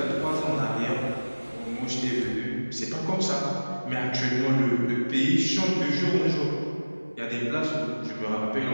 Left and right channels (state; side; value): inverted; both; correlation -1.00